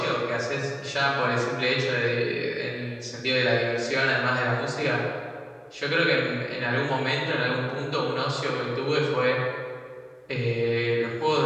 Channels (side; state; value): both; identical; correlation 1.00